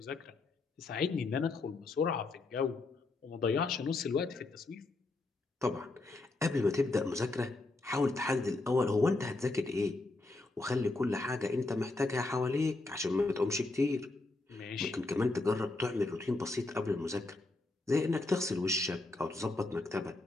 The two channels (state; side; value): quieter; right; 3.2 dB